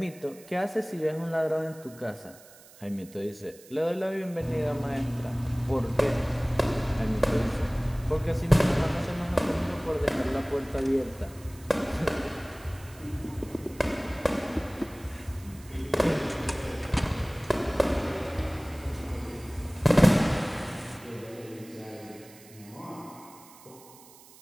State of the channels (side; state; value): right; noise; hiss, 22 dB below the sound